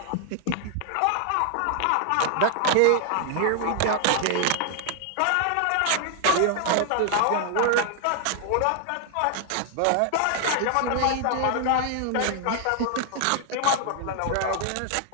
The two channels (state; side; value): different; both; correlation 0.00